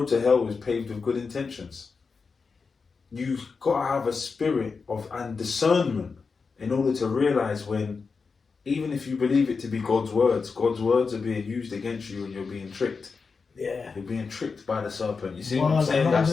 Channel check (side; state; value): right; quieter; 4.9 dB